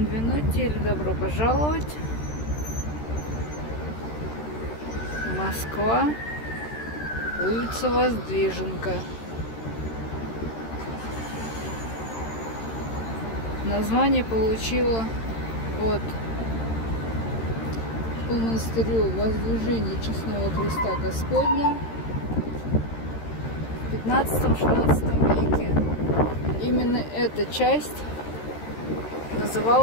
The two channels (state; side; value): late; right; 13 ms